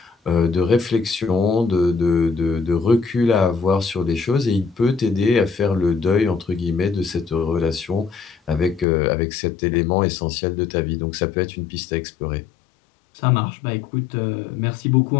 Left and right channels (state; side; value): drops out; right; at 8.8 s